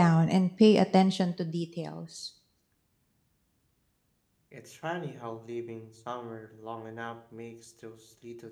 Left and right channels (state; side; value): identical; both; correlation 1.00